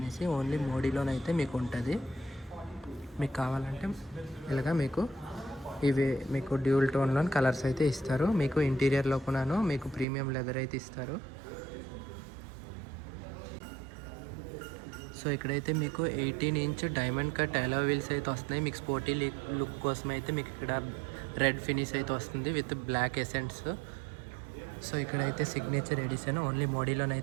ఓన్లీ మోడీలోనైతే మీకు ఉంటుంది. మీకు కావాలంటే ఇలాగా మీకు ఇవి మీకు డ్యూల్ టోన్లో కలర్స్ అయితే ఇస్తారు. మీకు ఇంటీరియర్లో కూడాను మీకు ప్రీమియం లెదర్ అయితే ఇస్తారు. సో ఇక్కడైతే మీకు 18 ఇంచ్ డైమండ్ కట్ అలా వీల్స్ అయితే వస్తున్నాయి. మీకు స్పోర్టీ లుక్ కోసం అయితే మీకు ఇక్కడ రెడ్ ఫినిష్ అయితే వస్తుంది విత్ బ్లాక్ ఎసెంట్స్. సో ఇక్కడైతే సిగ్నేచర్ ఎడిషన్ ఓన్లీ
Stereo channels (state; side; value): drops out; left; at 10.1 s